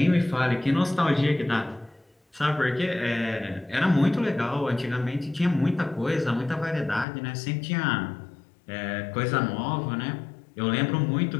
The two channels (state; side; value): drops out; right; at 7.1 s